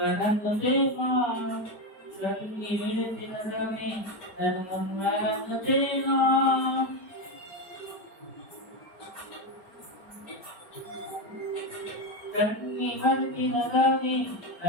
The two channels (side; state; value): right; late; 4.7 ms